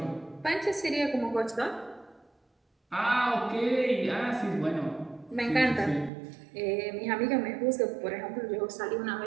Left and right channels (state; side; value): drops out; left; at 6.1 s